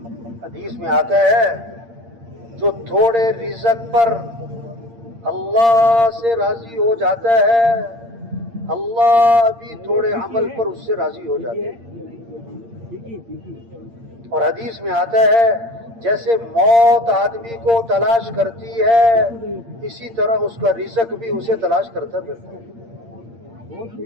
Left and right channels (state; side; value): late; left; 8.7 ms